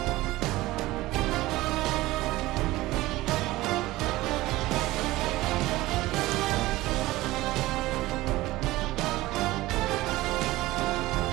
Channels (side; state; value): left; quieter; 18.2 dB